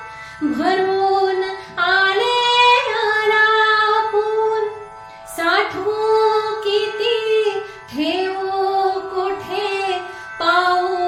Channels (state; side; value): identical; both; correlation 1.00